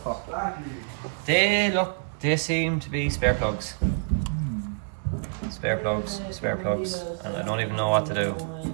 They seem to be spare plugs. Spare plugs, and I don't even know what to do.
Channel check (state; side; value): silent; left; 60 dB below the other